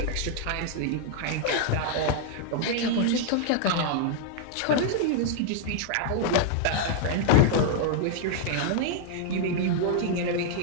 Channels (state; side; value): different; both; correlation -0.01